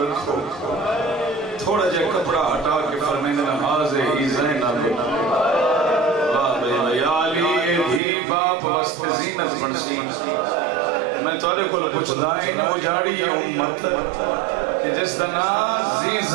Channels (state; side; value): drops out; left; at 8.0 s